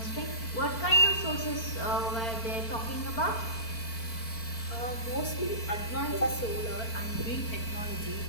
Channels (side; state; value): right; late; 4.4 ms